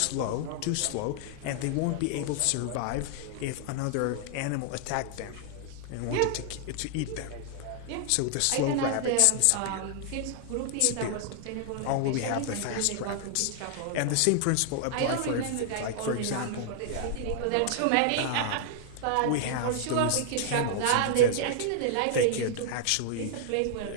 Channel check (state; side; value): different; both; correlation -0.01